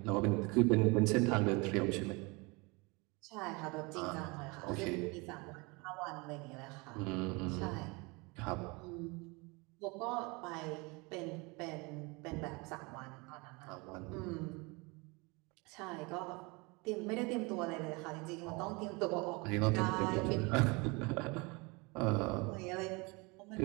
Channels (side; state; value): left; quieter; 27.2 dB